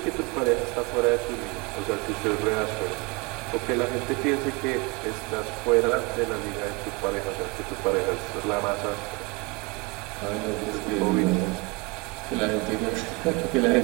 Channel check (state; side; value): quieter; left; 26.2 dB